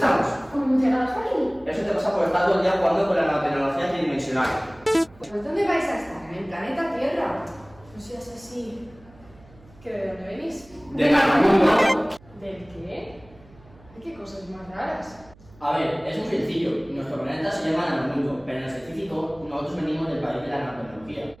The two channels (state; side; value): noise; right; hum, 25 dB below the sound